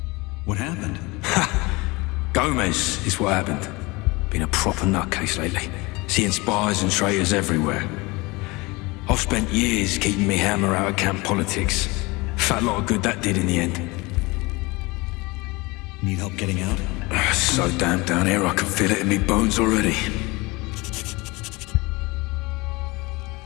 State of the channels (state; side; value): quieter; right; 24.2 dB